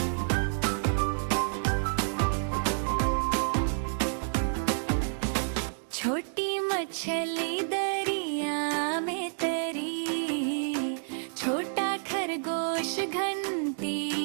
छोटी मछली दरिया में तरी, छोटा खरगोश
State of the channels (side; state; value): left; silent; digital silence